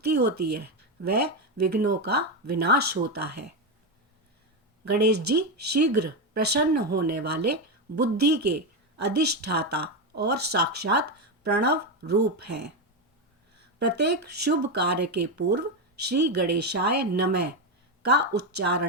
होती है व विघ्नों का विनाश होता है। गणेश जी शीघ्र प्रसन्न होने वाले बुद्धि के अधिष्ठाता और साक्षात प्रणव रूप हैं। प्रत्येक शुभ कार्य के पूर्व श्री गणेशाय नमः का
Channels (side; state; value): both; normal; correlation 0.10